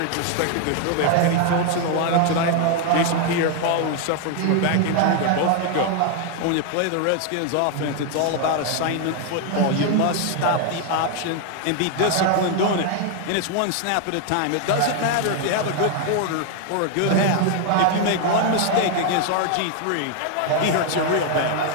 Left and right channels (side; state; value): both; different; correlation 0.00